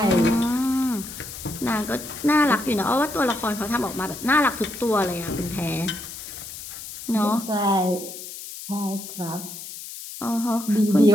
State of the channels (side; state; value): left; noise; hiss, 11 dB below the sound